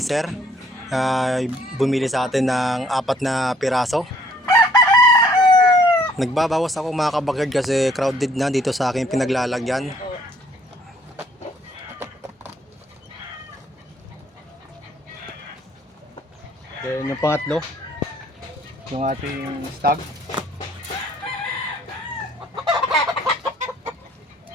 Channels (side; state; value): both; normal; correlation 0.62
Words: Bumili sa atin ng 4 na piraso. Nagbabawas ako mga ka-backyard kasi crowded na dito sa aking pinaglalagyan. Then yung pangatlo, yung ating stag.